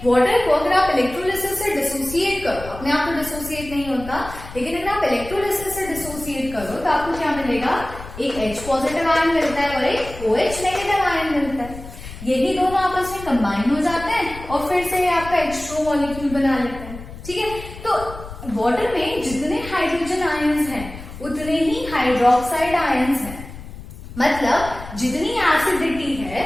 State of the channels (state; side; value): noise; left; rumble, 13 dB below the sound